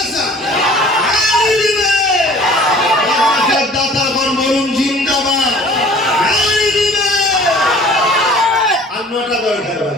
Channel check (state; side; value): normal; both; correlation 0.49